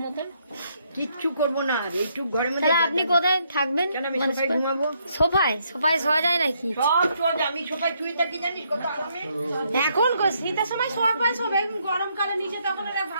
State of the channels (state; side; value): inverted; both; correlation -0.73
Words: মতন। কিচ্ছু করবো না, একটু ঘরের মধ্যে। তাহলে আপনি কোথায় থাকবেন? ঘুমাবো সোফায়। সোফায় শোয়া যায় নাকি? সব সোজা, আমি সোফায় শুয়ে থাকি জানিস কত আরামে। এখন শীতের সময় শোয়া পায় সব, গরমকালে নিচে তখন ওরা